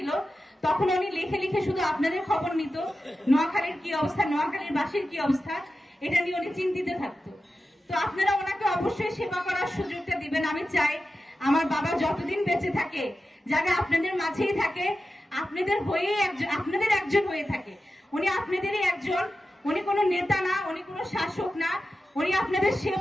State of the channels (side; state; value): both; normal; correlation 0.92